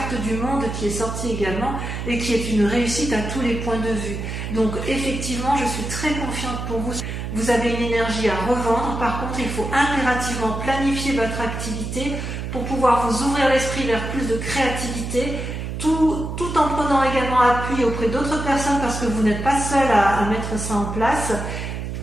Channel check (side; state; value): right; noise; hum, 5 dB below the sound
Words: du monde qui est sortie également et qui est une réussite à tous les points de vue. Donc effectivement, je suis très confiante pour vous. Vous avez une énergie à revendre. Par contre, il faut impérativement planifier votre activité pour pouvoir vous ouvrir l'esprit vers plus de créativité, tout en prenant également appui auprès d'autres personnes parce que vous n'êtes pas seul à mettre ça en place